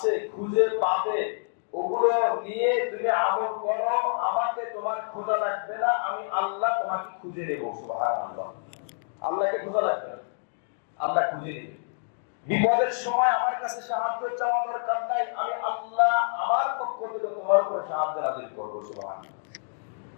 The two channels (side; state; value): right; silent; digital silence